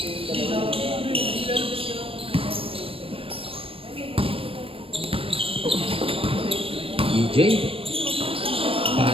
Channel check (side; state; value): left; late; 0.27 ms